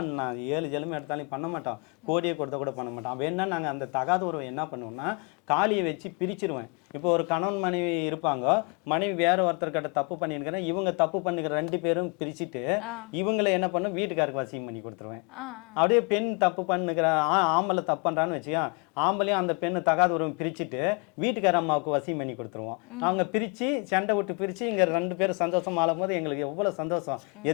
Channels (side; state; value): right; quieter; 33.4 dB